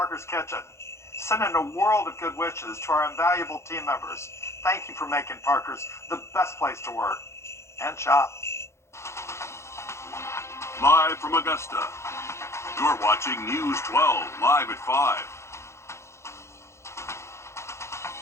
Kitchen. Sending a world of good wishes to our invaluable team members. Thank you for making Parker's the best place to work and shop. Live from Augusta, you're watching News 12, live at 5.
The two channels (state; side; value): late; right; 0.13 ms